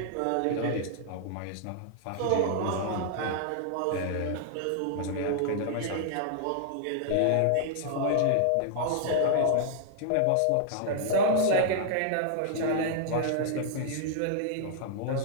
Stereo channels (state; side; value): different; both; correlation -0.01